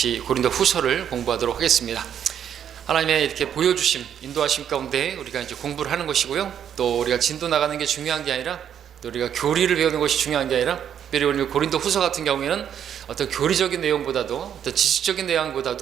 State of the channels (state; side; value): quieter; left; 9.2 dB